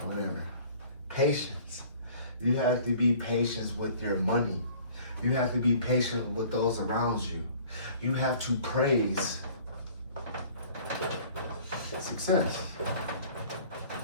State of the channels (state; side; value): inverted; both; correlation -0.51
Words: Whatever. Patience. You have to be patient with your money. You have to be patient with those around you. You have to praise success.